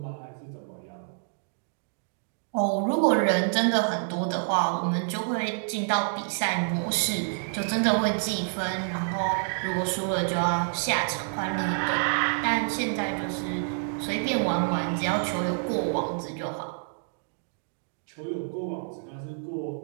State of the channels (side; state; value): left; silent; digital silence